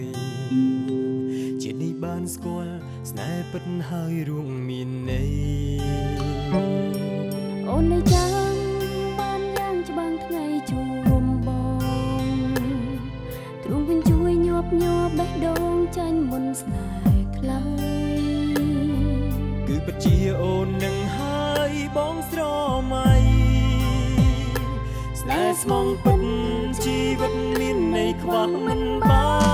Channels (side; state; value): both; identical; correlation 1.00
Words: យជានេះបានស្គាល់ស្នេហ៍ពិតហើយរួមមានន័យអូននៅចាំបានយ៉ាងច្បាំងថ្ងៃជួបបងទ្រង់វិញជួយញាប់ញ័របេះដូងចាញ់មុនស្នេហ៍ខ្លីគឺពិតជាអូននឹងហើយបងស្រមៃស្នេហ៍ស្មងពិតជីវិតមានន័យខ្វះមិនបា